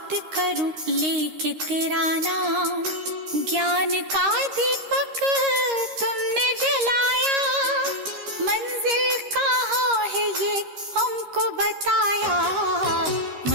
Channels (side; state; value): left; late; 13 ms